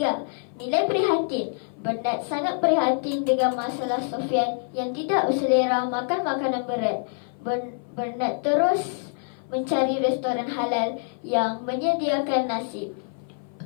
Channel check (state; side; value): silent; right; 56 dB below the other